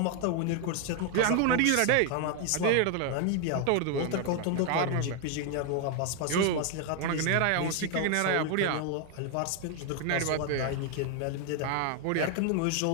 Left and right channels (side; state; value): both; different; correlation 0.01